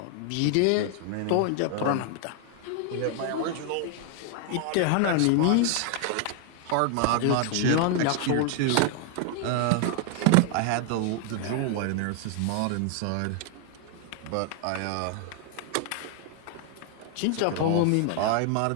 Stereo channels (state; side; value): different; both; correlation 0.00